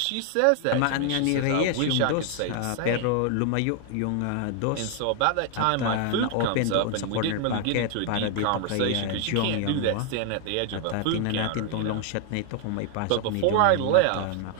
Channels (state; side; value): different; both; correlation 0.00